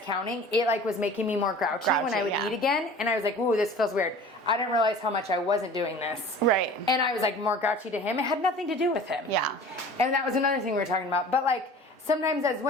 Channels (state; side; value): normal; both; correlation 0.43